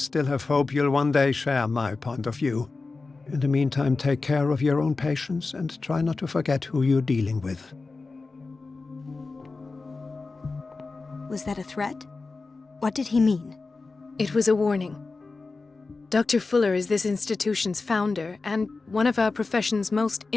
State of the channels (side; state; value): right; quieter; 3.9 dB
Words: have hope you'll one day share my point of view. In the meantime, take care of your own patients and try not to forget who you're dealing with. Was that a threat? What did he mean? It was a warning. Dr. Fuller is this institution's founder and one of our profession's most